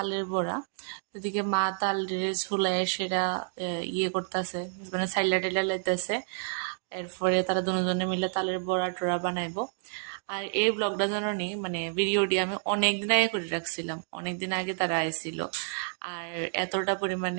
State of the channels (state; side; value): silent; left; digital silence